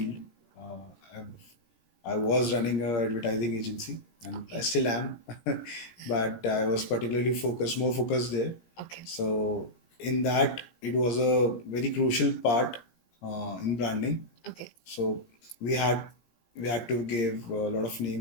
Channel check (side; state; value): right; late; 17 ms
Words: I was running a advertising agency, and I still am, but I was particularly more focused there. Okay. So in that, it was a very crucial part in branding. Okay. So we had we had to give a lot of